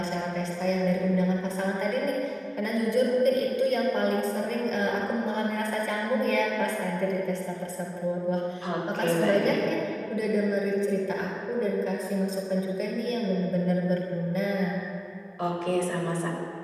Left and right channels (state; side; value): identical; both; correlation 1.00